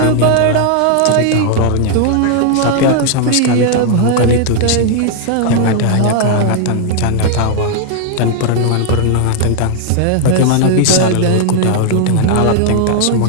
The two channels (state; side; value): different; both; correlation 0.00